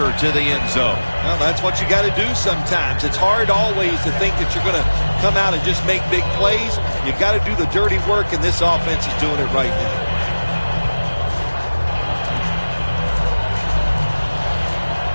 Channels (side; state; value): both; inverted; correlation -1.00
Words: to the end zone. Well, that's what you got to do sometimes. It's hard always to think that you're going to come out and just make big plays. You got to do the dirty work, and this offense is doing it right now.